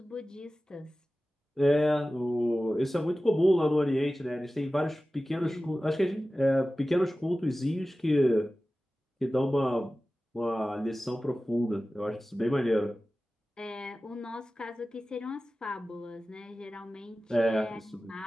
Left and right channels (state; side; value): normal; both; correlation 0.96